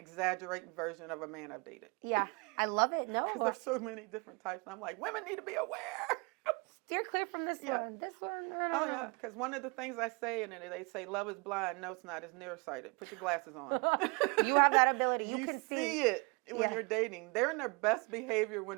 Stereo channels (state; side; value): quieter; left; 30.9 dB